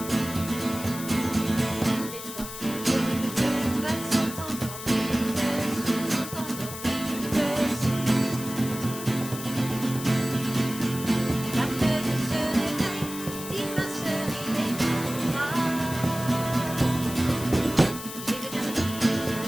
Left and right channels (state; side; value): noise; left; hiss, 10 dB below the sound